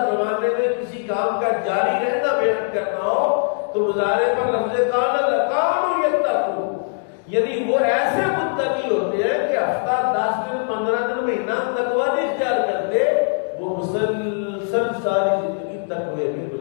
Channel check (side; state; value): right; silent; digital silence